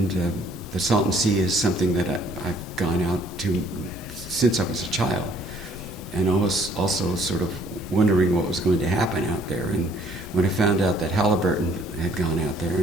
the Salton Sea is something that I've gone out to since I was a child, and I was also sort of wondering what was going to happen out there. And when I found out that Halliburton had gone out there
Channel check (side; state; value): both; normal; correlation 0.61